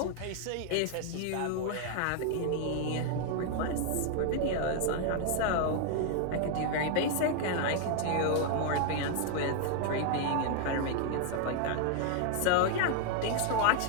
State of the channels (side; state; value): both; different; correlation 0.00